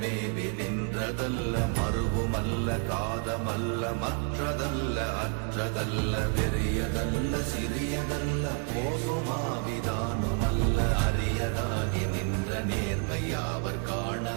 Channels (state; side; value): quieter; left; 36.9 dB